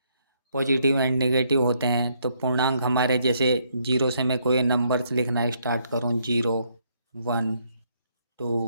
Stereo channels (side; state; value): both; inverted; correlation -0.72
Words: पॉजिटिव एंड नेगेटिव होते हैं। तो पूर्णांक हमारे, जैसे 0 से मैं कोई नंबर्स लिखना स्टार्ट करूँ, 0, 1,